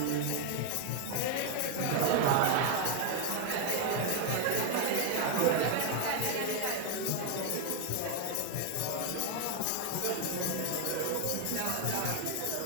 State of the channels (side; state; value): both; different; correlation 0.00